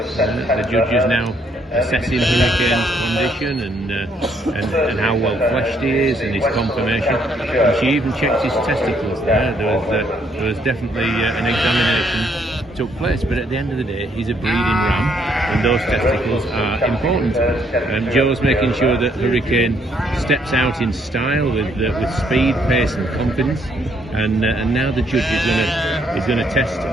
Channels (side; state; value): both; normal; correlation 0.70